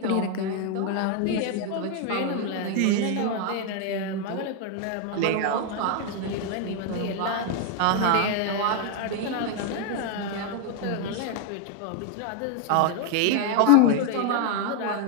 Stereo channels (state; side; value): different; both; correlation 0.01